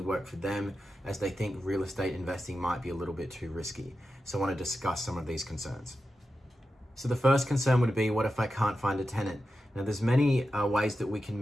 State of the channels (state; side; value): normal; both; correlation 0.91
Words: work for them, as they think real estate investing might be a little bit too risky. So I want to discuss some of these concerns. So the first concern would be, what if I can't find a tenant? Now there's many ways that we can